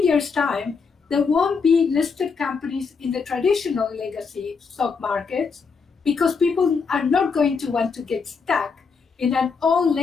years' time, there won't be listed companies in the traditional legacy stock markets, because people are not going to want to get stuck in an old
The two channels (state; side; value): quieter; right; 5.2 dB